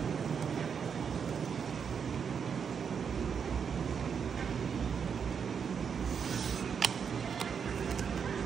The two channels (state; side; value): quieter; left; 6.7 dB